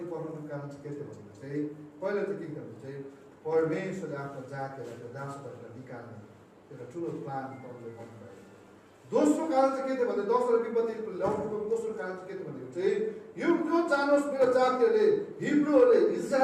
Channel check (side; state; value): both; identical; correlation 1.00